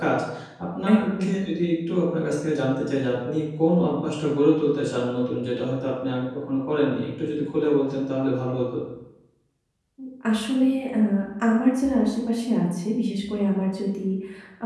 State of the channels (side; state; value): both; identical; correlation 1.00